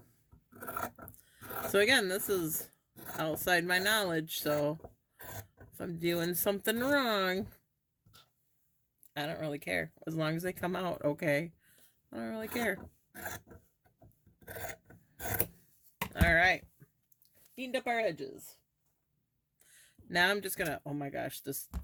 so again, this is outside my knowledge, so if I'm doing something wrong, I don't really care. As long as they come out okay, I don't really care. All right, cleaned up our edges. Now I'm just gonna, oh my gosh, this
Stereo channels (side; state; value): both; identical; correlation 1.00